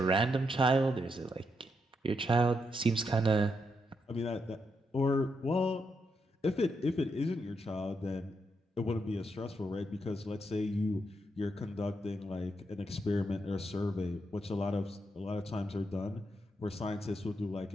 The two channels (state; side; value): normal; both; correlation 0.81